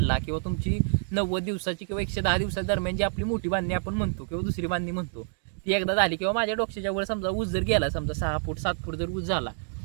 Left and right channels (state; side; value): silent; left; digital silence